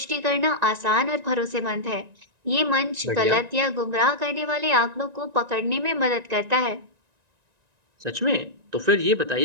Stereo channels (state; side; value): late; left; 1.9 ms